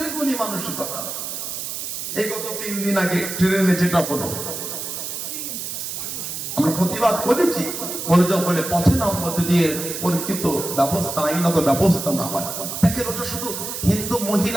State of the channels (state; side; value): noise; right; hiss, 5 dB below the sound